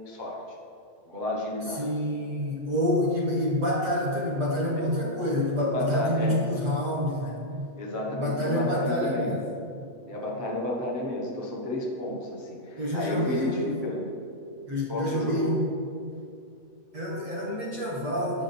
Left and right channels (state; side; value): late; left; 8.2 ms